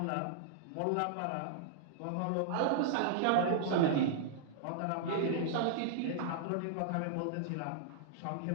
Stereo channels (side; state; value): both; different; correlation -0.02